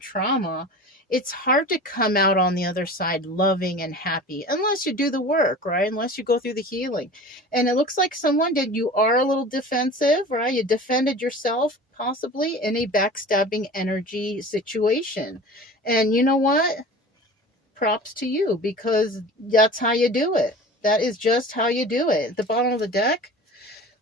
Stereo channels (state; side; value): normal; both; correlation 0.38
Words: trauma, it's hard to come out on the other side loving and happy unless you do the work, right? Unless you go through the healing. And it looks like someone did. You are a little defensive, right? You defended yourself possibly in a backstabbing energy situation. And you know what? Props to you, because that's how you do it. That is just how you do it. At the bottom of the deck,